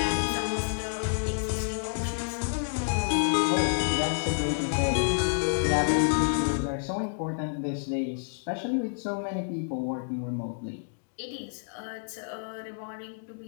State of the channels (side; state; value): right; silent; digital silence